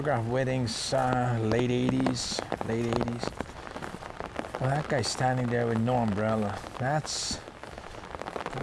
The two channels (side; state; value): both; identical; correlation 1.00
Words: weddings, late 80s. Well, that guy's standing there with no umbrella.